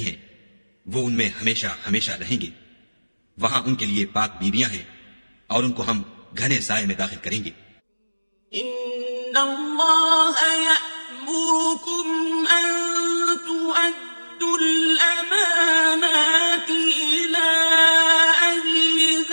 ہیں، وہ ان میں ہمیشہ ہمیشہ رہیں گے. وہاں ان کے لیے پاک بیویاں ہیں اور ان کو ہم گھنے سائے میں داخل کریں گے. ان اللہ یأمرکم ان تؤدوا الامانات الى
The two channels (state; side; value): inverted; both; correlation -1.00